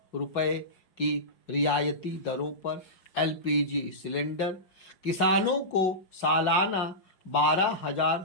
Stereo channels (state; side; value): late; right; 5.5 ms